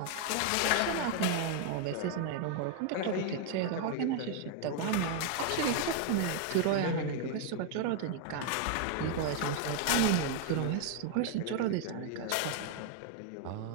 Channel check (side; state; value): both; different; correlation 0.00